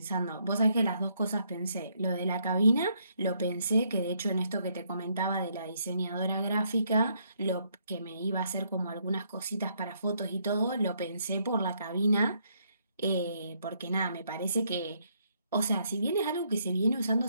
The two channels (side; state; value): both; inverted; correlation -0.72